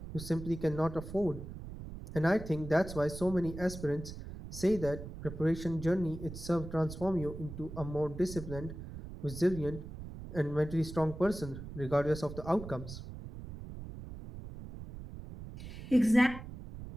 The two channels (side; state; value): right; noise; rumble, 11 dB below the sound